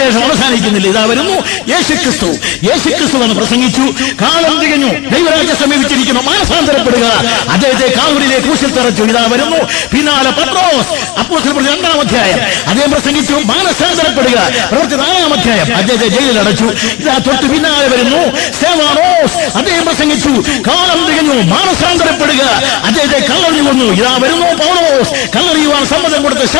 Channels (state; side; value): quieter; right; 21.0 dB